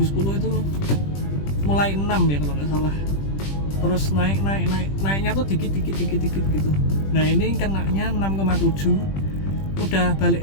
itu mulai 6 ya kalau nggak salah, terus naiknya tuh dikit gitu. Nah ini kenanya 6,7, udah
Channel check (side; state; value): right; late; 20 ms